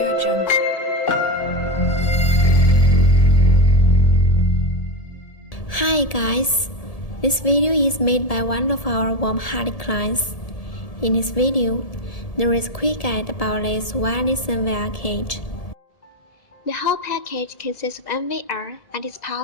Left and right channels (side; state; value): right; late; 1.7 ms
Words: Jungle. Hi guys, this video is made by one of our warm-hearted clients. In this video, there is a quick guide about this wireless NVR cage. The whole package consists of NVR and its